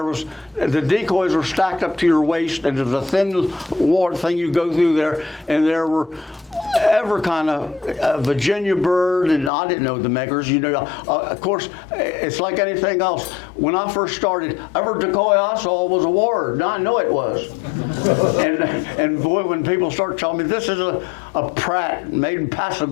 decoys were stacked up to your waist, and there was a thin ward thing you go through there, and there were every kind of Virginia bird, and I didn't know the makers. You know, of course, it's like anything else. When I first started, every decoy I saw was a ward. Now I know it was. and boy, when people start telling me this is a Pratt made in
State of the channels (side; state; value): right; drops out; at 9.5 s